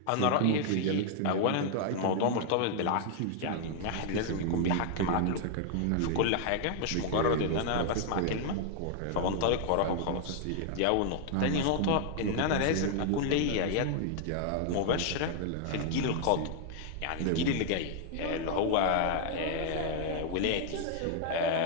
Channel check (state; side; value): different; both; correlation 0.00